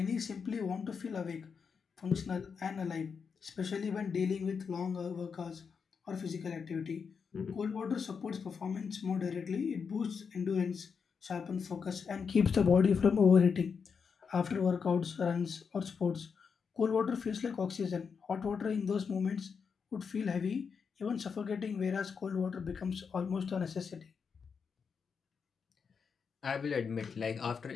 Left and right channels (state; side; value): quieter; right; 6.0 dB